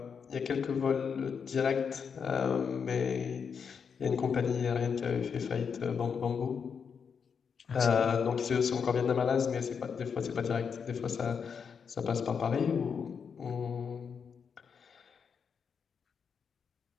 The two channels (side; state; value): right; quieter; 6.5 dB